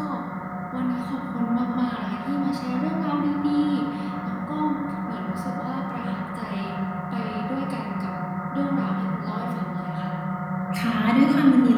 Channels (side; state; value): both; identical; correlation 1.00